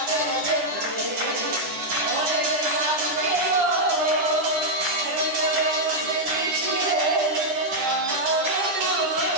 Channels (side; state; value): left; late; 10 ms